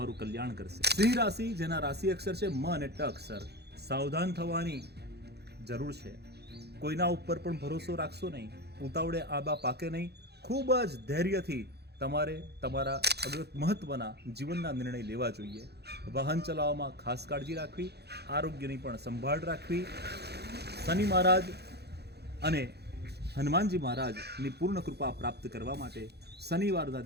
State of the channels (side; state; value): left; late; 0.48 ms